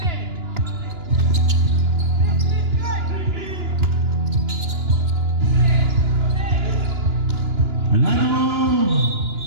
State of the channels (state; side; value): late; left; 2.9 ms